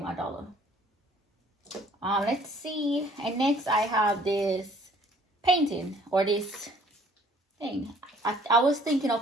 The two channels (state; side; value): normal; both; correlation 0.57